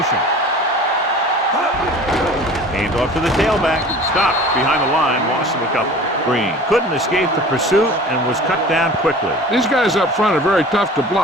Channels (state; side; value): normal; both; correlation 0.42